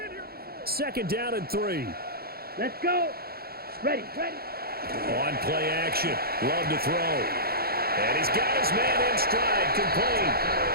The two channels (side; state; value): left; late; 0.45 ms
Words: Second down and 3. Let's go. Ready. On play action. Love to throw. And he's got his man in stride, complete.